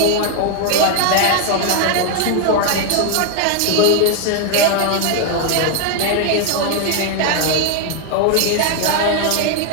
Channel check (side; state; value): both; different; correlation 0.01